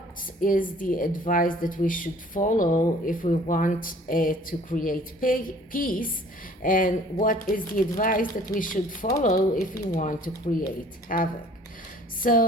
is the advice that we should follow if we want to create peace? And what is the advice that we should follow if we want to create havoc?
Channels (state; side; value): normal; both; correlation 0.53